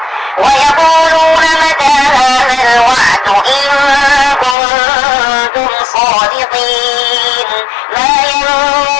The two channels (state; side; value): drops out; right; at 4.5 s